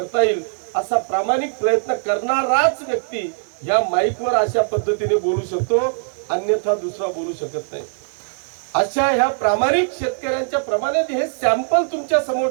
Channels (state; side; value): silent; left; 65 dB below the other